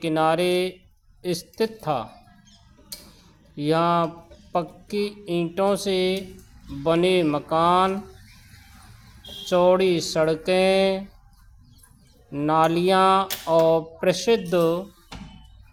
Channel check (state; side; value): identical; both; correlation 1.00